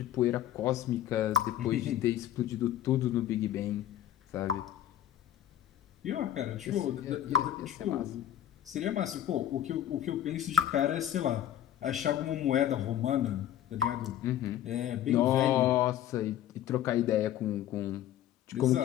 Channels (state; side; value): quieter; right; 11.6 dB